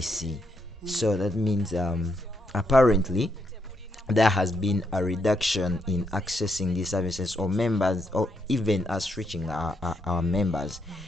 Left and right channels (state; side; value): normal; both; correlation 0.77